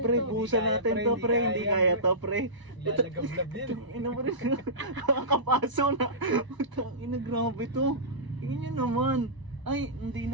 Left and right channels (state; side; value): late; left; 1.0 ms